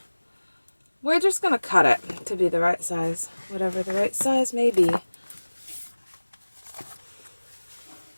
We're just going to cut it to be the right size. Whatever the right size may be.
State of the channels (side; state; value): both; inverted; correlation -1.00